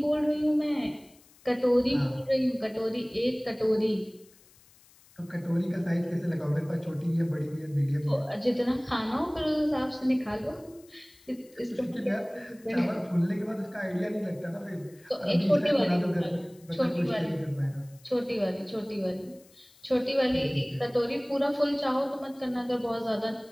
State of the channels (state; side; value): noise; left; hiss, 27 dB below the sound